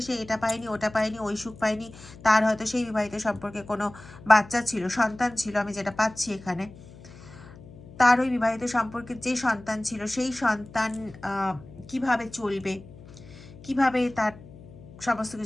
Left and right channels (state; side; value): noise; left; hum, 19 dB below the sound